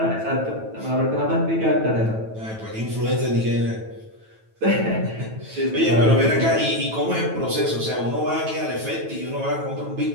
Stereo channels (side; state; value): left; late; 9.1 ms